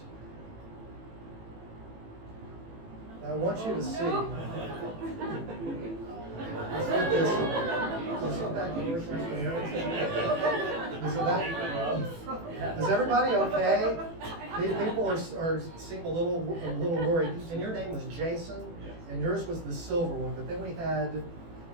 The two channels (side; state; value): left; late; 18 ms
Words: I want you to see. Let's get this. Is it back here? Is it that? Is everybody okay? People seem a little worried. And your name was Jason, and yours was the silver one. But then we had